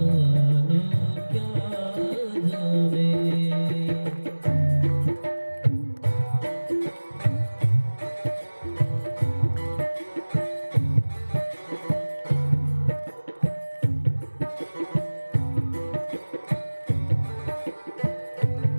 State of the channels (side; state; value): both; inverted; correlation -1.00